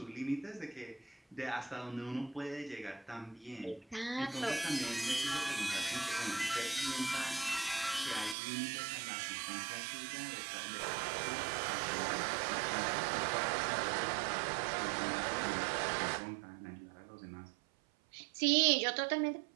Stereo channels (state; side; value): drops out; left; at 8.3 s